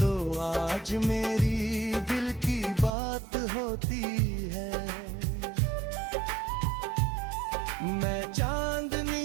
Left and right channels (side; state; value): left; drops out; at 2.9 s